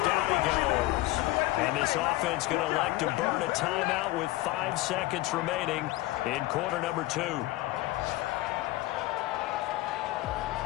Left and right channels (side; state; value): right; quieter; 18.1 dB